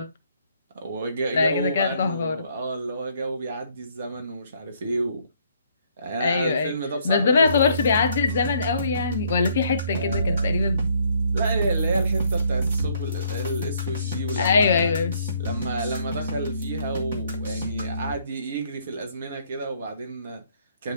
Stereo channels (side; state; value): both; inverted; correlation -0.67